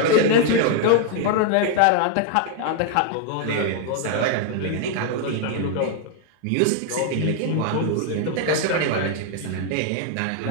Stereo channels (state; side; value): different; both; correlation 0.00